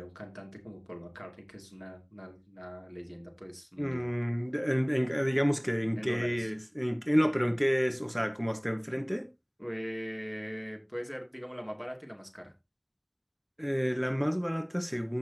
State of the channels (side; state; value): both; identical; correlation 1.00